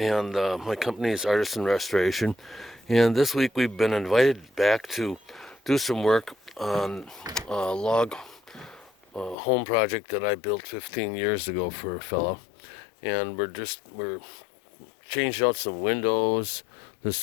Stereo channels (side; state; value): right; drops out; at 9.3 s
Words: my company is Artisan Restoration. And this week we've been invited back to do some work on a log home project that I built 15 years ago for a fellow. And we're changed out some windows. This